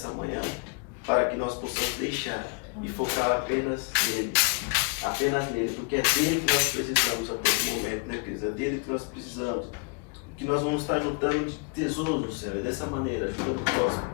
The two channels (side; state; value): right; quieter; 35.5 dB